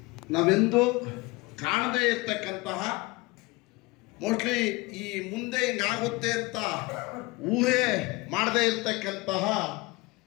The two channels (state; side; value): quieter; right; 23.6 dB